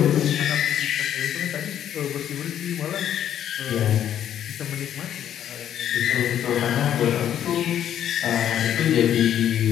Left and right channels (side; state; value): right; quieter; 10.3 dB